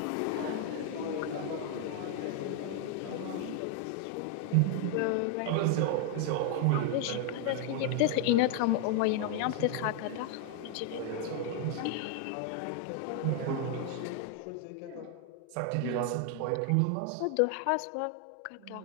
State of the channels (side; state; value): both; different; correlation 0.00